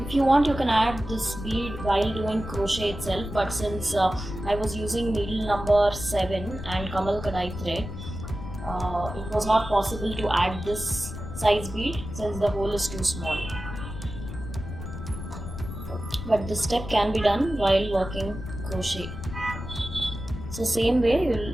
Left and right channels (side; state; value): left; noise; rumble, 9 dB below the sound